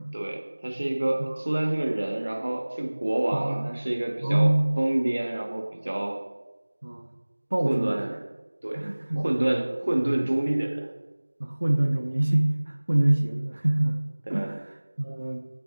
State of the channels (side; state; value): both; inverted; correlation -1.00